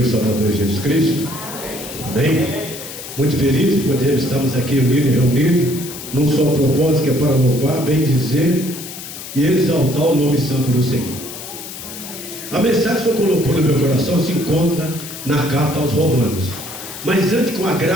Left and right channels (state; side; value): noise; left; hiss, 11 dB below the sound